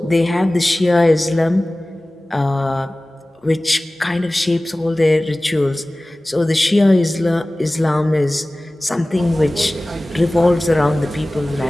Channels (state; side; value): normal; both; correlation 0.98